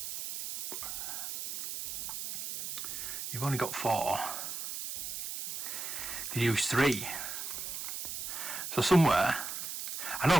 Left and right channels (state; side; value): noise; right; hiss, 5 dB below the sound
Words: You've only got 4. You use 3. So somewhere, I know